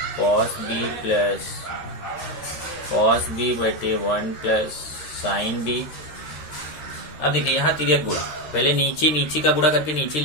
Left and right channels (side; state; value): right; late; 13 ms